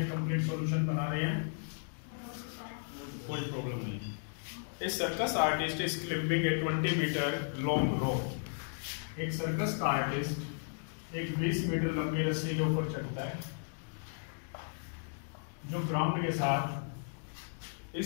कंप्लीट सॉल्यूशन बना रहे हैं, कोई प्रॉब्लम नहीं। A circus artist is climbing a 20 metre long rope. एक सर्कस का आर्टिस्ट एक 20 मीटर लंबी रस्सी के ऊपर चढ़ता है जो ग्राउंड के साथ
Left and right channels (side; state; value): right; silent; digital silence